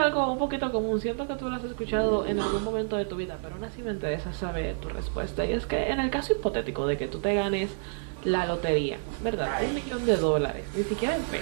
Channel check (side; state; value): left; silent; 59 dB below the other